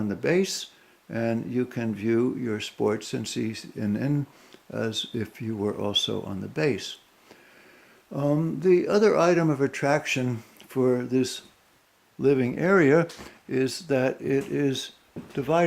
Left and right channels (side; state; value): both; identical; correlation 1.00